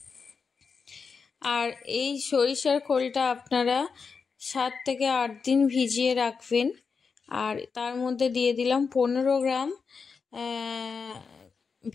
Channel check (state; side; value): quieter; right; 5.4 dB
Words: আর এই সরিষার খোলটা আপনারা 7 থেকে 8 দিন ভিজিয়ে রাখবেন। আর তার মধ্যে দিয়ে দিলাম 15 গ্রাম